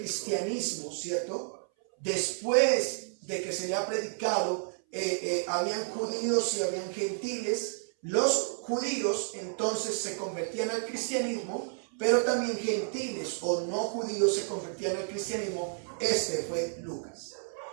¿cierto? Después de que se le ha predicado, habían judíos y habían gentiles. Los judíos entonces se convertían al cristianismo, pero también gentiles o no judíos se convertían al cristianismo. Este fue Lucas.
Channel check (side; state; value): left; silent; 57 dB below the other